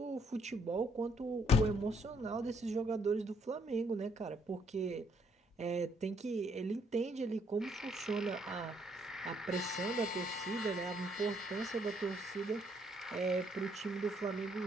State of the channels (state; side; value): normal; both; correlation 0.69